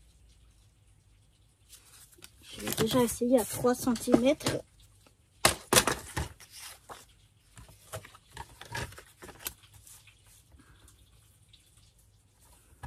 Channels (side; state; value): both; identical; correlation 1.00